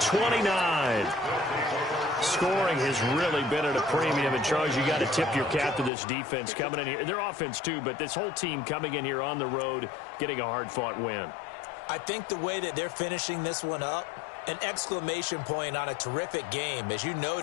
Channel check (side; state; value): right; drops out; at 5.9 s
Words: Scoring has really been at a premium. And, Charles, you got to tip your cap to this defense coming in here. Their offense, too, but this whole team coming in here on the road, getting a hard-fought win. I think the way that they're finishing this one up, an exclamation point on a terrific game. As you